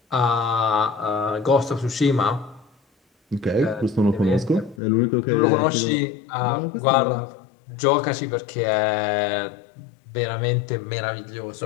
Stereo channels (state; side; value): drops out; right; at 4.8 s